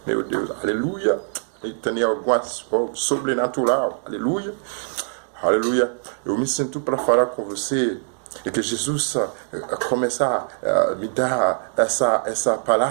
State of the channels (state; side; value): silent; left; digital silence